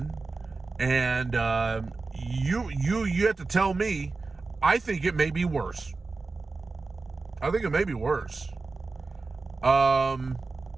and you have to tell me, I think it may be worse.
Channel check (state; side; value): quieter; left; 3.9 dB